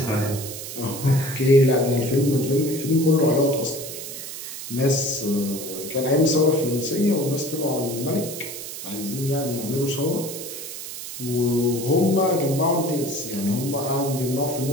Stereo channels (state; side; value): noise; right; hiss, 9 dB below the sound